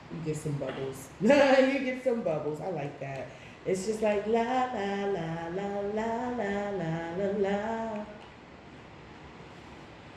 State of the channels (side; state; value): both; identical; correlation 1.00